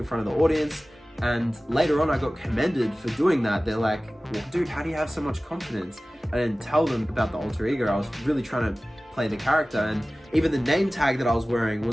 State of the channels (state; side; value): normal; both; correlation 0.97